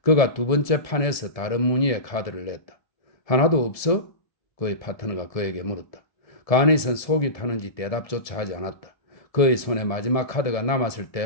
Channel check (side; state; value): right; late; 1.7 ms